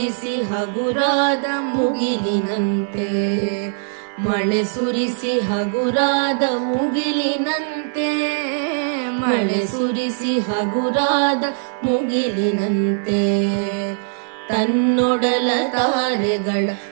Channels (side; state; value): left; silent; 57 dB below the other